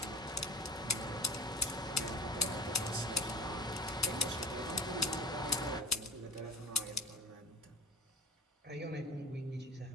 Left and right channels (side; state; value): both; normal; correlation 0.36